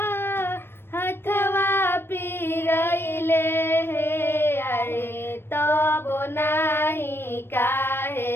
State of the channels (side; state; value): right; late; 0.11 ms